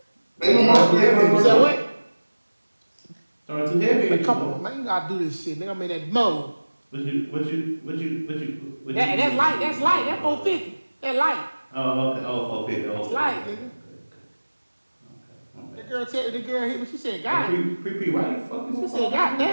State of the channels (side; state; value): both; inverted; correlation -1.00